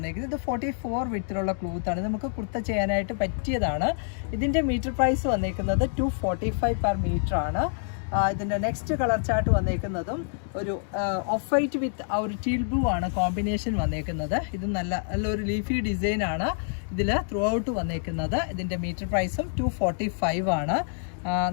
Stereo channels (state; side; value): silent; right; digital silence